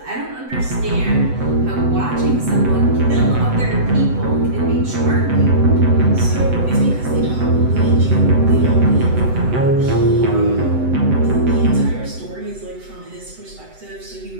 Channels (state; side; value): late; left; 7.9 ms